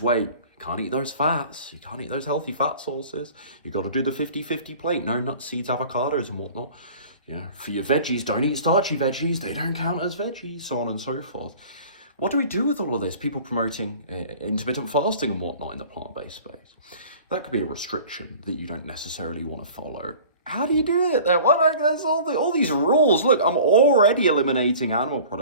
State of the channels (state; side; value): inverted; both; correlation -0.45